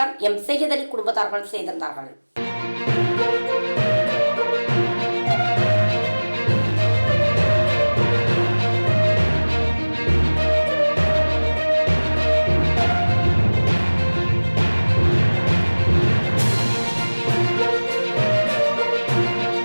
M. சையத் அலி குடும்பத்தார்கள் செய்திருந்தார்கள்.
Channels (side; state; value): both; inverted; correlation -1.00